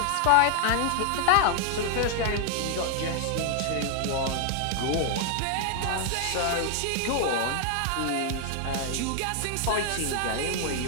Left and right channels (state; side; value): different; both; correlation 0.00